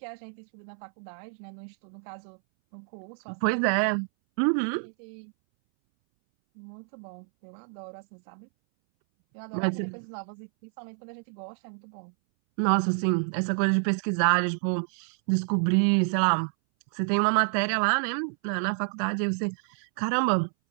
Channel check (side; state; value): left; silent; 59 dB below the other